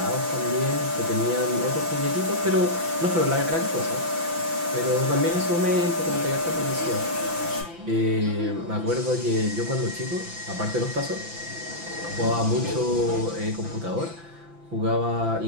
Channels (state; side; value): late; left; 5.9 ms